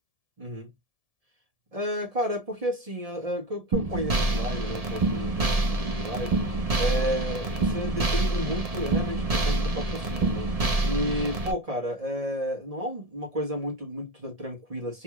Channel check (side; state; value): left; late; 1.7 ms